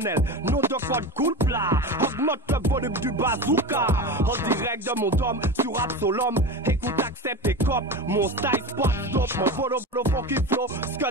Nom de code cool plat. Augmente le volume du bazooka. En direct de mon dôme sur Absolum. Écoute, accepte et cop. Mon style spot stop. Mon volo funky flow.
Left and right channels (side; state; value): both; normal; correlation 0.26